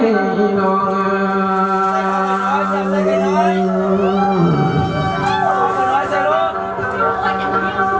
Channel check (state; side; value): identical; both; correlation 1.00